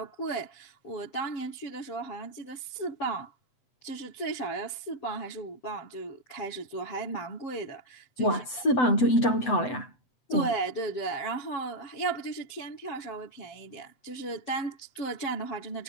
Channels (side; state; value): right; late; 7.9 ms